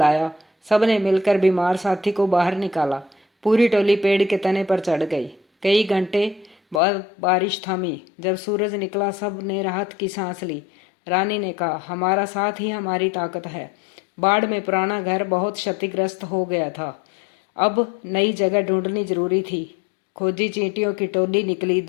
सबने मिलकर बीमार साथी को बाहर निकाला। पूरी टोली पेड़ के तने पर चढ़ गई। कई घंटे बाद बारिश थमी। जब सूरज निकला, सब ने राहत की सांस ली। रानी ने कहा, हमारा साथ ही हमारी ताकत है। बाढ़ में पुराना घर बहुत क्षतिग्रस्त हो गया था। अब नई जगह ढूंढनी जरूरी थी। खोजी चींटियों की टोली निकली।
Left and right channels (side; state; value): right; drops out; at 6.8 s